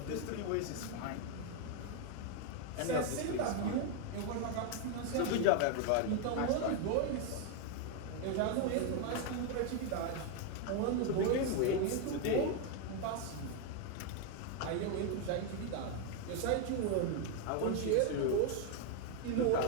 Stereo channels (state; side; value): different; both; correlation 0.01